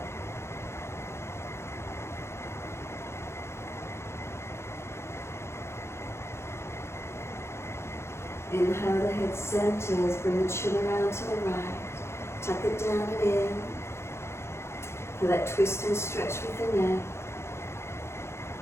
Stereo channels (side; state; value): right; late; 0.13 ms